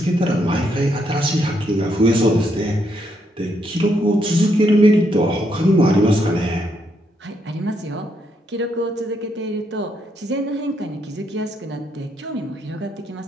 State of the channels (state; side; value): normal; both; correlation 0.76